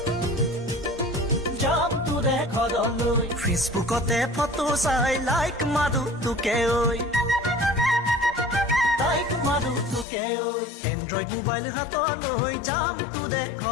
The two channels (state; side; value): drops out; right; at 10.1 s